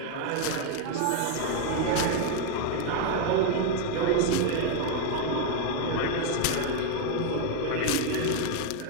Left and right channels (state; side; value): different; both; correlation 0.01